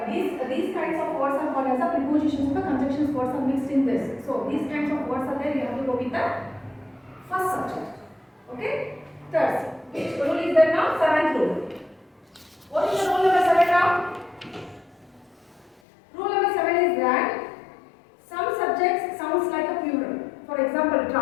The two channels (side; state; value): right; drops out; at 15.8 s